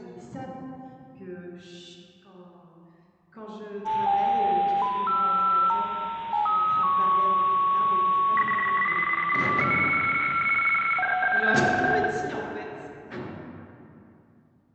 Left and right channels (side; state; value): both; identical; correlation 1.00